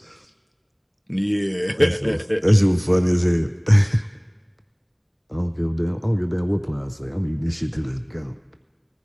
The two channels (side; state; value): both; identical; correlation 1.00